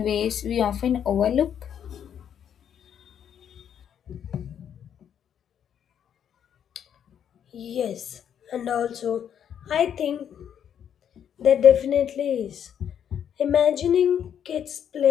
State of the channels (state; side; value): quieter; right; 8.9 dB